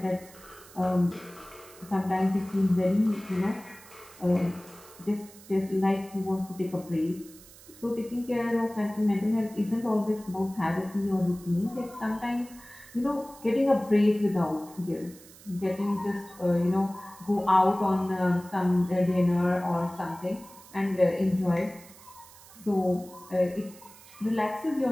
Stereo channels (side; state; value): right; noise; hiss, 21 dB below the sound